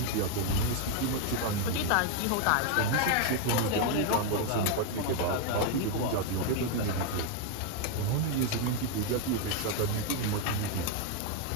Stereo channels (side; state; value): both; different; correlation 0.01